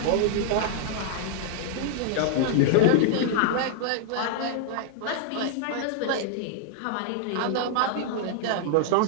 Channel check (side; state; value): both; different; correlation -0.01